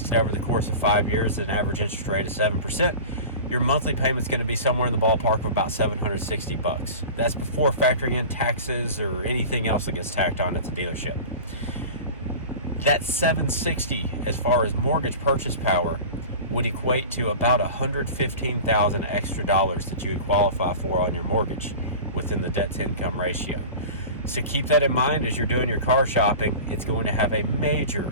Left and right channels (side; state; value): both; inverted; correlation -0.35